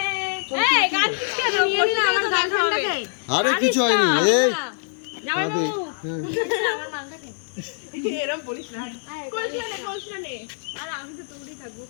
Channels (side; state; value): right; silent; digital silence